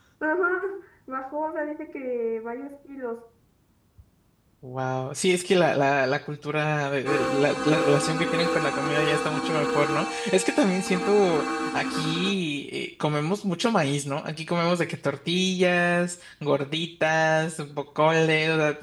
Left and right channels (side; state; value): both; identical; correlation 1.00